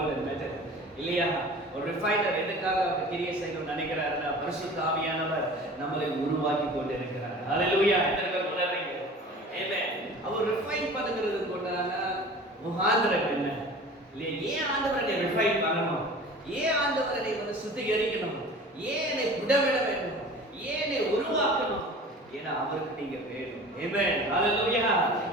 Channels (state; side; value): normal; both; correlation 0.41